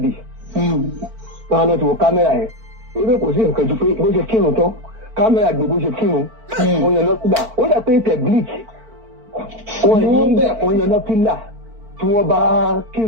Wọ́n á lọ ti wo kámẹ́rà yẹn. Ebe kò sí nǹkan ju pé bó ṣe kírun tán kámẹ́rà gbé bó ṣe kírun. Wọ́n yan lọ́kùnrin. Ó dà pé tẹ̀ bleach. Wọ́n yan lọ́kùnrin tí wọ́n bá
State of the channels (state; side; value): late; left; 4.5 ms